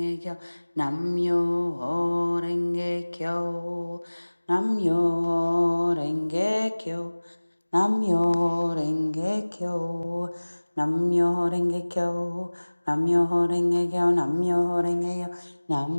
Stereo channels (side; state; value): both; inverted; correlation -1.00